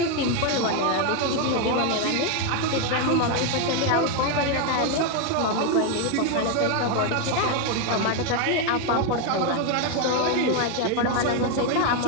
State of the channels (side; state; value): both; different; correlation 0.02